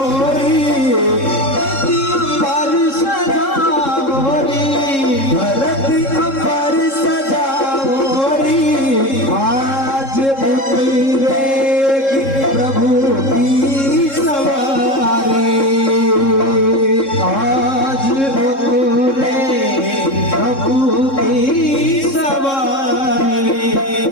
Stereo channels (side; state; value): right; late; 3.7 ms